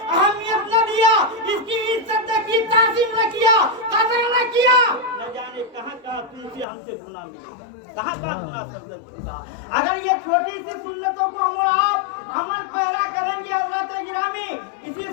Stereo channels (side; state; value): right; drops out; at 6.7 s